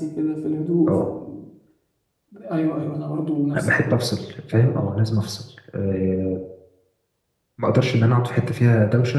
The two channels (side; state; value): both; identical; correlation 1.00